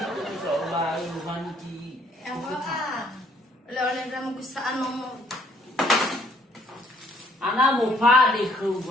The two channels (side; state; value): both; normal; correlation 0.64